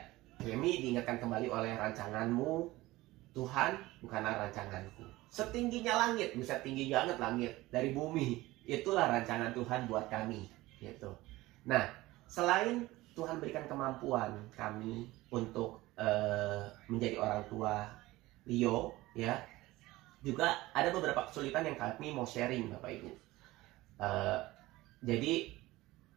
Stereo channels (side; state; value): left; quieter; 18.7 dB